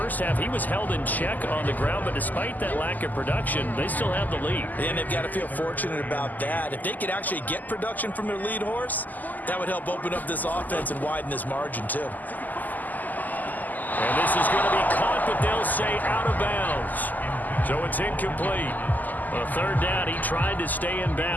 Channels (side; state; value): right; late; 0.083 ms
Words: half, he was held in check on the ground, but despite that lack of production, they still have the lead. And they've got to feel fortunate about that. If they could actually get production from their lead horse, that would help open up this offense and widen this margin too. And this is going to be caught, but they'll say out of bounds. So it's incomplete. On 3rd down, he tried to stay in